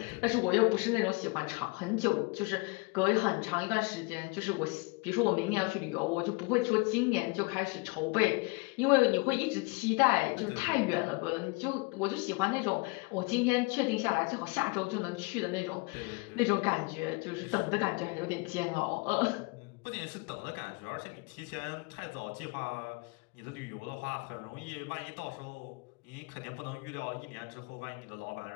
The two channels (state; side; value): quieter; right; 28.8 dB